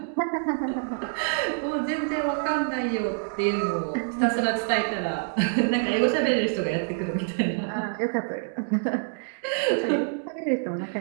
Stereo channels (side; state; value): left; silent; digital silence